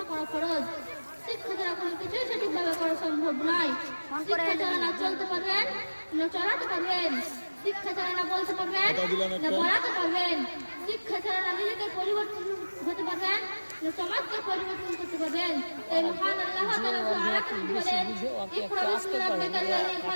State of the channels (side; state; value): both; inverted; correlation -1.00